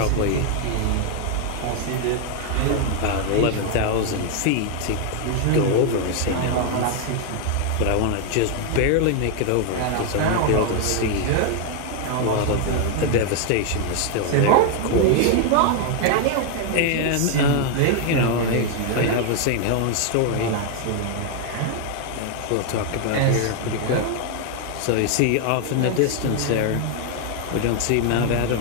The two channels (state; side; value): different; both; correlation 0.00